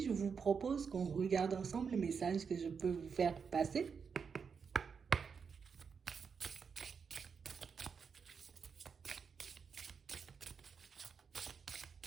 vous propose qu'on regarde ensemble le message que je peux vous faire passer.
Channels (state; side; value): quieter; left; 6.1 dB